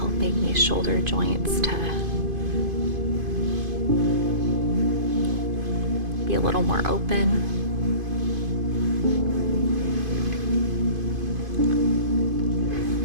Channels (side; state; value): left; late; 2.5 ms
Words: these shoulder joints to be a little more open.